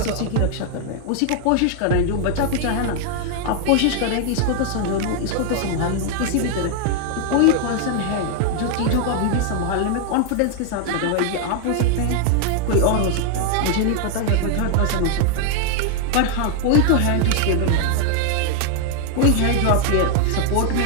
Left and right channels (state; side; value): different; both; correlation 0.00